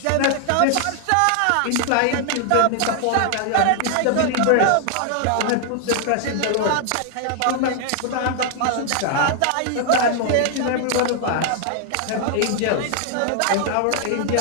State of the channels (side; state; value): both; different; correlation 0.00